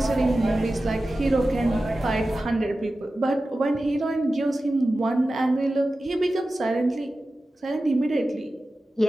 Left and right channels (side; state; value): both; normal; correlation 0.94